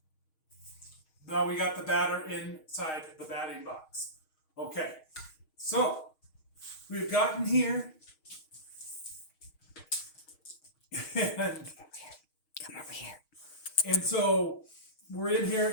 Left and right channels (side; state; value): right; late; 6.4 ms